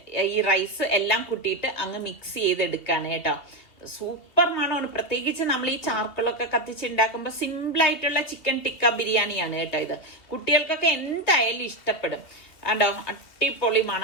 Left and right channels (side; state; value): right; late; 2.7 ms